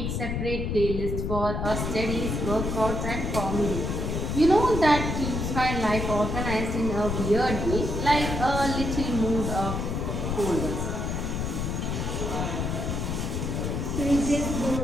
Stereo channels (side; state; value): left; noise; rumble, 2 dB below the sound